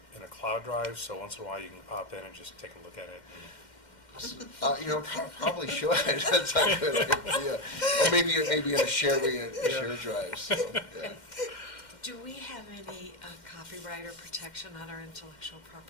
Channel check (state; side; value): late; right; 2.1 ms